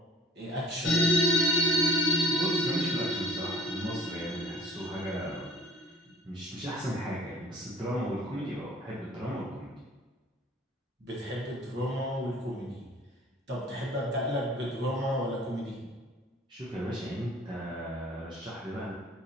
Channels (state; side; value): normal; both; correlation 0.49